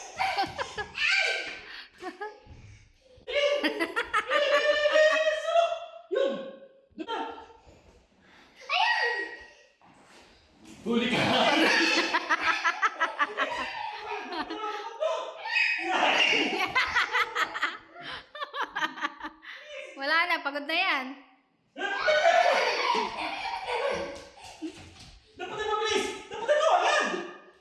Yun! Doon na! Huli ka! Wala na, pagod na yan. Dapat na mabilis! Dapat na agad!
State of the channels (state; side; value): identical; both; correlation 1.00